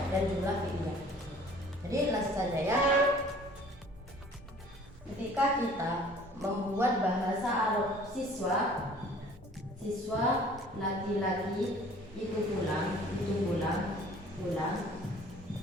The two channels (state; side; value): normal; both; correlation 0.51